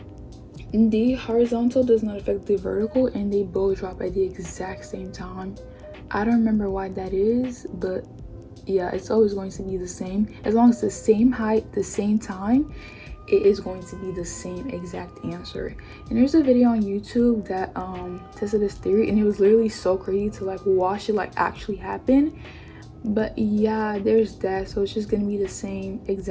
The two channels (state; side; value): identical; both; correlation 1.00